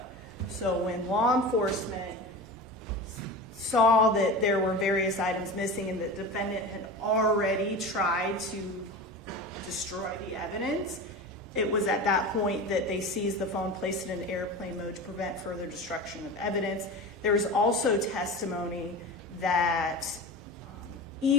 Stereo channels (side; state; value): both; normal; correlation 0.30